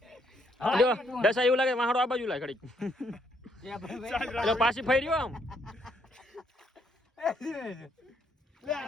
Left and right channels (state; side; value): normal; both; correlation 0.71